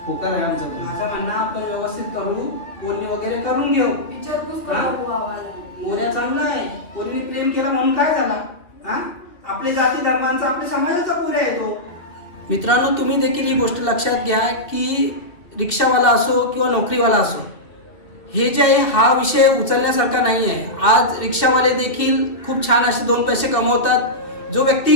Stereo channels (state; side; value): late; right; 2.4 ms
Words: होकार आहे आमचा. माझं म्हणणं आपण व्यवस्थित करू, बोलणी वगैरे करून घेऊ. विचारपूस हा? करू आवाज मोऱ्या चांगला आहे, पोरीने प्रेम केला म्हणून काय झाला? हा आपले जाती धर्मांचा आपल्या समाजाचा पोऱ्या येतो. मित्रांनो, तुम्ही देखील ही गोष्ट लक्षात घ्या की रिक्षावाला असो किंवा नोकरीवाला असो, हे जे आहे हा विषय उचलण्यासारखा नाही आहे. आज रिक्षावाले देखील खूप छान असे 2 पैसे कमवतात. जो व्यक्ती